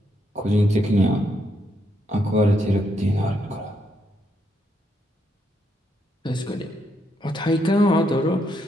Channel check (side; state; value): both; normal; correlation 0.77